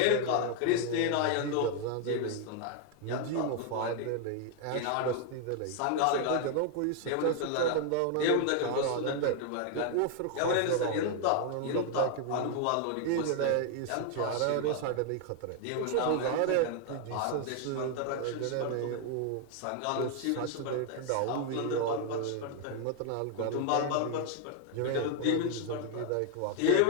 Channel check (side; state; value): both; different; correlation 0.00